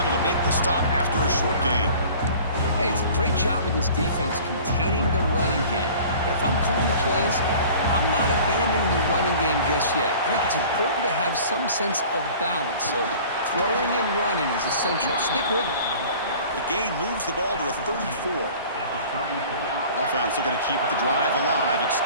to make the stop after a short gain. Hey, it's a great job of this defense containing the running game. But if I'm calling the plays, I'm not abandoning the running game just yet. I think it's important to have some sense of balance. So throwing and running is essential. Stick with it. The gain moves the ball to the 34. Offense looking to keep the drive alive. It's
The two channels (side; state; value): both; inverted; correlation -0.45